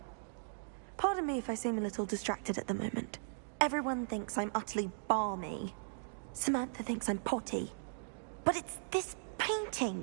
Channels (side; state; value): left; silent; digital silence